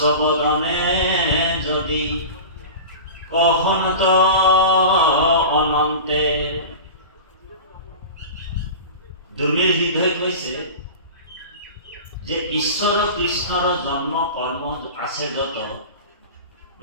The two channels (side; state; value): both; inverted; correlation -0.32